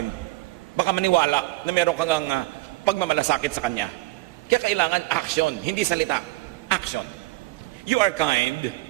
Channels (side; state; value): left; quieter; 20.1 dB